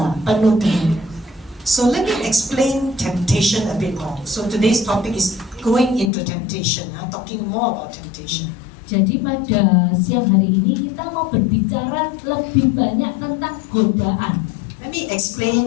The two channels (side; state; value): right; drops out; at 6.1 s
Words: penuh dengan. So let me explain temptation a bit more. So today's topic is going into temptation, talking more about temptation. Jadi pada siang hari ini kita mau berbicara lebih banyak tentang godaan. Let me